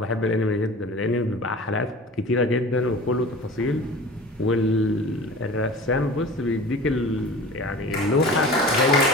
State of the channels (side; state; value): both; normal; correlation 0.39